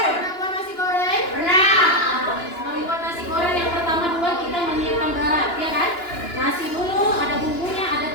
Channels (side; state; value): right; late; 2.9 ms